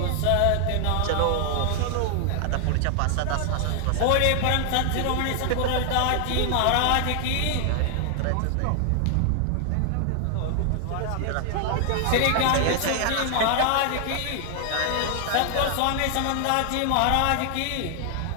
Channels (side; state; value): both; different; correlation 0.00